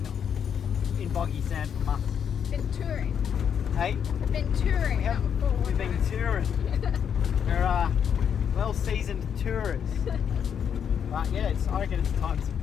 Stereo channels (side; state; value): right; quieter; 7.9 dB